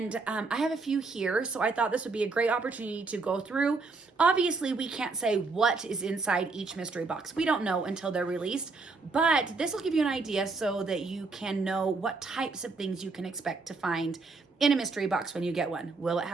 I have a few here, so I thought this would be a great opportunity to go through. Obviously, we can't say what is inside each mystery box. We don't know until they're released, but this will give you an idea so that you can know what types of things you can expect to find in a mystery box when you get one. Will it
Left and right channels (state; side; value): quieter; left; 4.0 dB